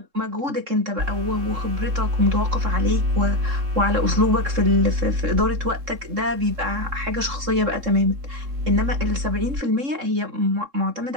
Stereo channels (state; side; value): late; left; 3.7 ms